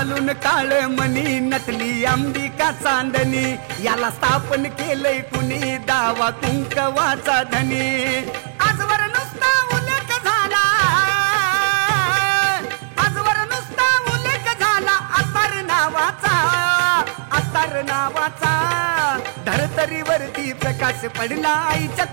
काळ मणी नटली अंबिका चांदणी याला स्थापन केलंय कुणी दावा कुंकवाचा धनी आजवर नुसता उल्लेख झाला आजवर नुसता उल्लेख झाला अत्तर नावाचा धरतरीवरती प्रकाश पडला आईच्या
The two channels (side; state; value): left; silent; 67 dB below the other